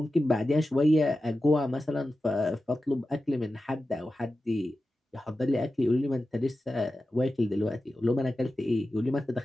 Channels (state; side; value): normal; both; correlation 0.93